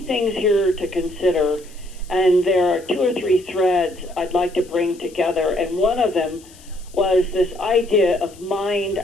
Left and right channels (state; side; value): noise; left; hiss, 24 dB below the sound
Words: things here to consider, and there are 2 or 3 threads I'd like to bring together, and one of them was this idea of mind